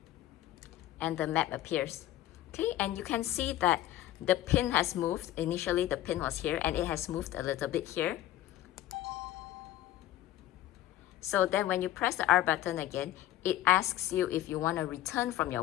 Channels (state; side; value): quieter; right; 14.0 dB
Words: and the map appears. Okay, and you can see that the pin has moved. Initially the pin was here and it has moved a little bit here. So then when you press the R button again, it asks you if you want to return from